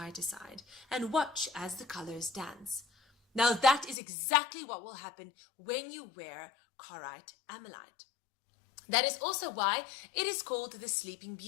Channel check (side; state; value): right; drops out; at 4.0 s